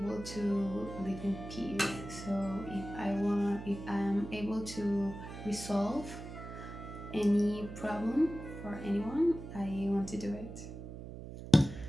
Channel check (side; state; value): right; noise; hum, 11 dB below the sound